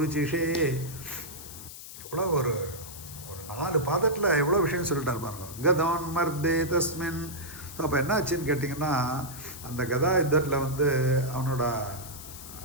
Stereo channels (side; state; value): left; noise; hiss, 13 dB below the sound